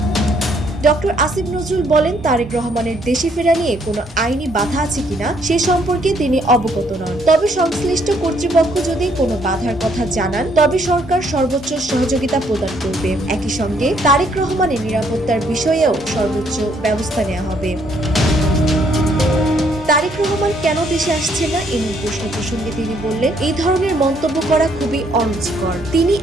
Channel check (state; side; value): normal; both; correlation 0.68